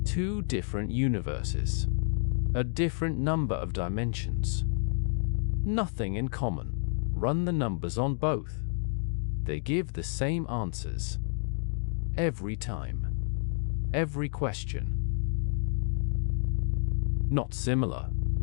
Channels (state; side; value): silent; right; digital silence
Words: Two different universes. A different number of dimensions. Nothing in common. Run the numbers on both. They give the same answers. Every time. Every question. Not similar.